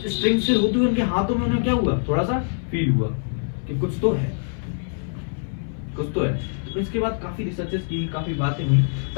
से होती हुई उनके हाथों में उन्हें क्या हुआ, थोड़ा सा फील हुआ कि कुछ तो है, कुछ तो है। तो इसके बाद काफी रिसर्चेस की, काफी बातें हुई,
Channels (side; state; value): right; silent; digital silence